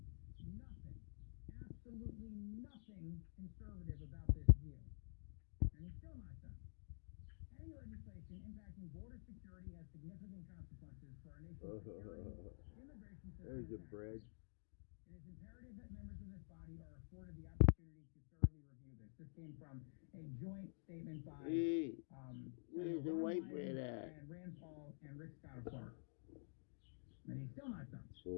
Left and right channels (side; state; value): right; silent; digital silence